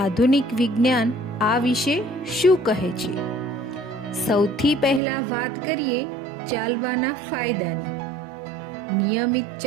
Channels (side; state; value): left; drops out; at 5.0 s